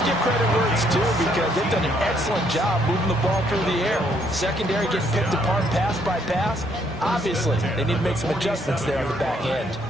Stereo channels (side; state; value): both; normal; correlation 0.69